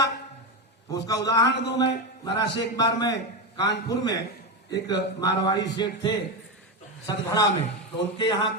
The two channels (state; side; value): normal; both; correlation 0.13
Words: उसका उदाहरण दूं मैं। महाराज से एक बार मैं कानपुर में, एक मारवाड़ी सेठ थे सतगढ़ा में, तो उनके यहाँ